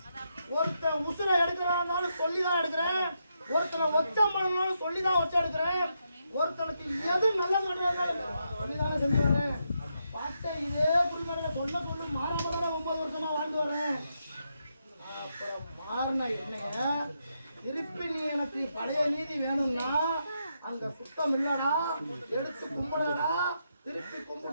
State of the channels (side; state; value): both; inverted; correlation -0.82